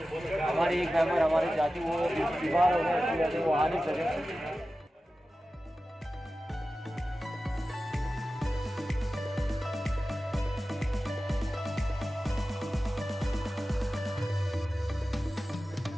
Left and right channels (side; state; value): both; normal; correlation 0.94